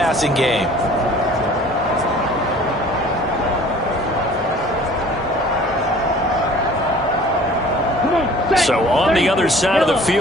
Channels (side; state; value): both; normal; correlation 0.49